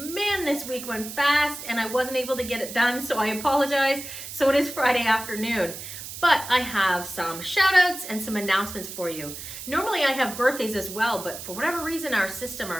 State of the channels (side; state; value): right; noise; hiss, 10 dB below the sound